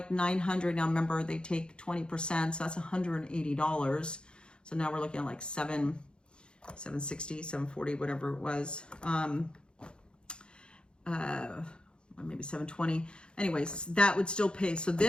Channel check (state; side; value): late; right; 0.052 ms